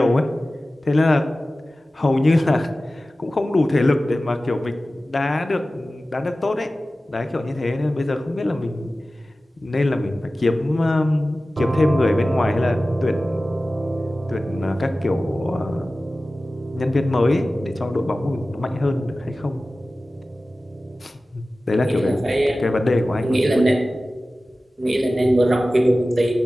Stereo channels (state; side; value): normal; both; correlation 0.96